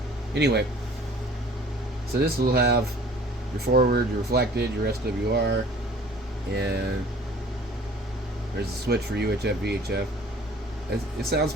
Anyway, so this will have your forward, your reflected, your SWR, and there's a switch for UHF, VHF. It sounds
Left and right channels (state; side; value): normal; both; correlation 0.50